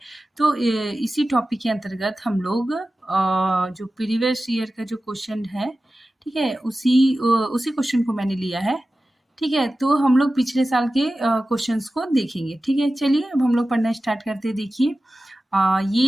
तो इसी टॉपिक के अंतर्गत हम लोग जो प्रीवियस ईयर का जो क्वेश्चन है, ठीक है, उसी क्वेश्चन को मैंने लिया है। ठीक है, तो हम लोग पिछले साल के क्वेश्चंस को देखेंगे। ठीक है, चलिए अब हम लोग पढ़ना स्टार्ट करते हैं। देखिए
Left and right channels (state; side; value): normal; both; correlation 0.95